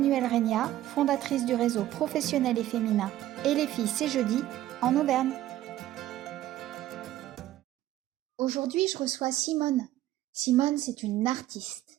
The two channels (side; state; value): left; quieter; 14.0 dB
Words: Regna, fondatrice du réseau professionnel et féminin Et les filles c'est jeudi en Auvergne. Aujourd'hui, je reçois Simone. Simone, c'est une